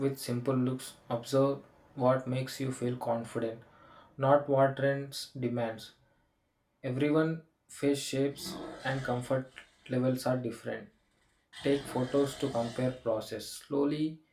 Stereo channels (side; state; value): both; identical; correlation 1.00